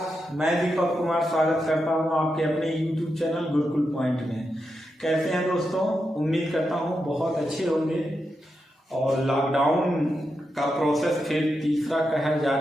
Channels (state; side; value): normal; both; correlation 0.86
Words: मैं दीपक कुमार स्वागत करता हूं आपके अपने YouTube चैनल गुरुकुल पॉइंट में। कैसे हैं दोस्तों? उम्मीद करता हूं बहुत अच्छे होंगे। और लॉकडाउन का प्रोसेस फिर तीसरा कहर